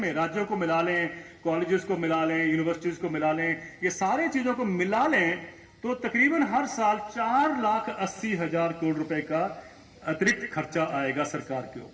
राज्यों को मिला लें, कॉलेजेस को मिला लें, यूनिवर्सिटीज को मिला लें, ये सारे चीजों को मिला लें, तो तकरीबन हर साल 4,80,000 करोड़ रुपए का अतिरिक्त खर्चा आएगा सरकार के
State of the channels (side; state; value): both; identical; correlation 1.00